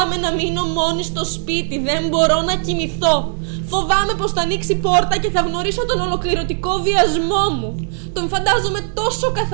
να μείνω μόνη στο σπίτι, δεν μπορώ να κοιμηθώ. Φοβάμαι πως θα ανοίξει πόρτα και θα γνωρίσω τον ολοκληρωτικό βιασμό μου. Τον φαντάζομαι τόσο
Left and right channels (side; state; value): left; silent; digital silence